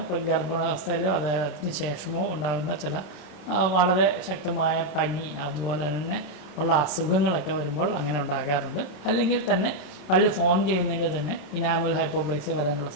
ഗർഭാവസ്ഥയിലോ അതിന് ശേഷമോ ഉണ്ടാകുന്ന ചില വളരെ ശക്തമായ പനി, അതുപോലെ തന്നെ ഉള്ള അസുഖങ്ങളൊക്കെ വരുമ്പോൾ അങ്ങനെ ഉണ്ടാകാറുണ്ട്. അല്ലെങ്കിൽ തന്നെ പല്ല് ഫോം ചെയ്യുന്നതിൽ തന്നെ ഇനാമൽ ഹൈപ്പോപ്ലേസിയ വരാനുള്ള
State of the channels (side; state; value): right; late; 27 ms